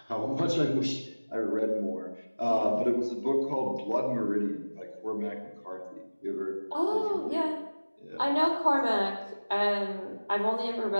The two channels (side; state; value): both; inverted; correlation -1.00